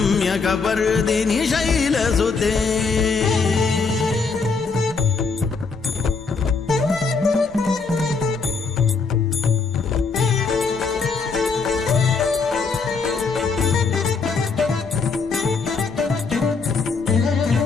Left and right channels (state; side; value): quieter; right; 4.6 dB